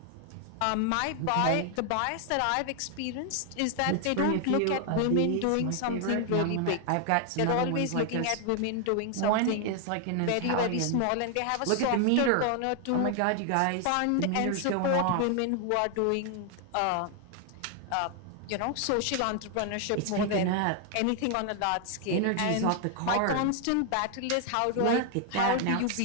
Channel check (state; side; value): different; both; correlation 0.00